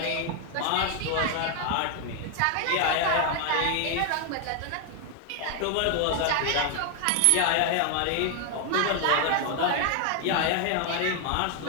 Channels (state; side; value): different; both; correlation 0.01